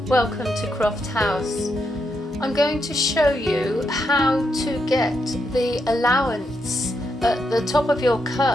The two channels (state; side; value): normal; both; correlation 0.81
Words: welcome to Croft House. I'm going to show you how to get the allowance at the top of your